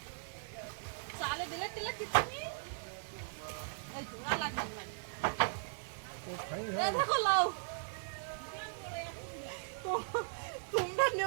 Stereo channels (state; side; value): silent; left; digital silence